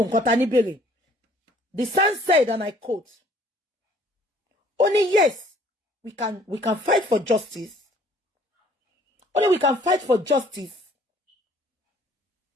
nǹkan tá ní béèrè. The son said, and I quote, only yes, we can fight for justice. Only we can fight for justice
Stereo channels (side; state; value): both; normal; correlation 0.58